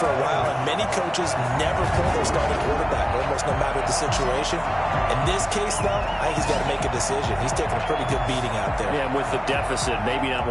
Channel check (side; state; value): both; identical; correlation 1.00